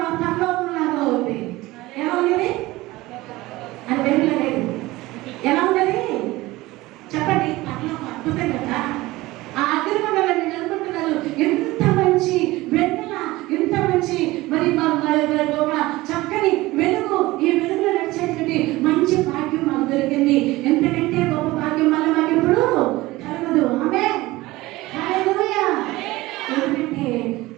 మా పరలోకం లాగా ఉంది. ఎలా ఉంది అని వెలుగులేదు, ఎలా ఉన్నది చెప్పండి, పరలోకం అద్భుతం కదా. ఆ అగ్నిగుండంలో నేను అనుకుంటున్నారు, ఎంత మంచి వెన్నెల, ఎంత మంచి మరి ఒక చక్కని వెలుగు, ఈ వెలుగులో నడిచేటువంటి మంచి భాగ్యం మాకు దొరికింది. ఎందుకంటే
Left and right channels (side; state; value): left; quieter; 19.2 dB